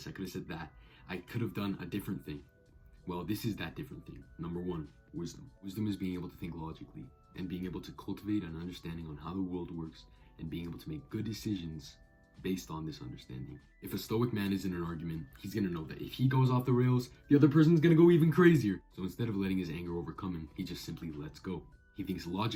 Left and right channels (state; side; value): identical; both; correlation 1.00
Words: I could have said that, I could have done a different thing. Well, this is that different thing. Number 1, wisdom. Wisdom is being able to think logically and being able to cultivate an understanding on how the world works and being able to make good decisions based on this understanding. If a stoic man is in an argument, he's gonna know that if he goes off the rails, the other person's gonna go even crazier. So instead of letting his anger overcome him, he just simply lets go. He thinks